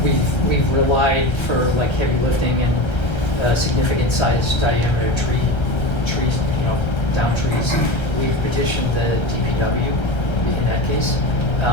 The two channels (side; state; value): right; late; 1.3 ms